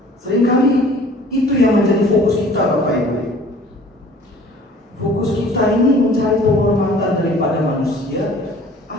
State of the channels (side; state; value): both; normal; correlation 0.50